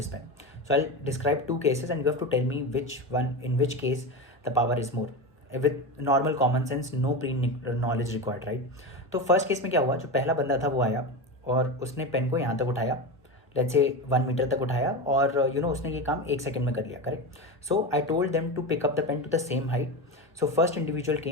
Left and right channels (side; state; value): both; normal; correlation 0.21